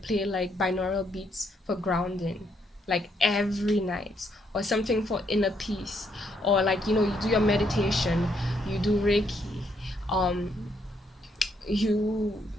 like binaural beats for grounding, like every night, or something for inner peace, or like you do your meditation, you do reiki, um you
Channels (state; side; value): normal; both; correlation 0.74